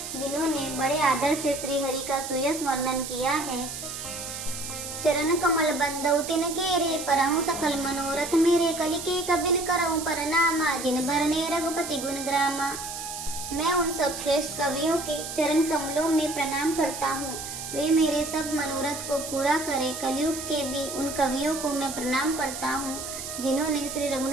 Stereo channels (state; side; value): noise; right; hiss, 8 dB below the sound